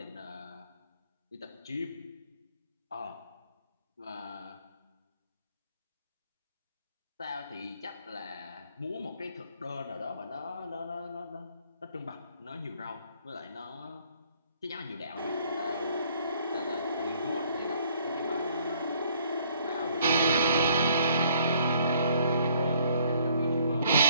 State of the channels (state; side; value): inverted; both; correlation -0.62